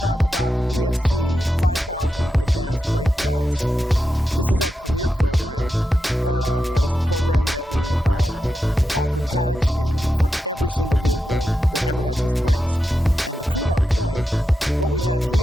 about the DFC 5000 Advanced Brake Pads. This is our premier program, and it's a program that we offer pads in for every single vehicle that ever had disc brakes. And to prove our point, what we have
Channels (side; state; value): both; normal; correlation 0.88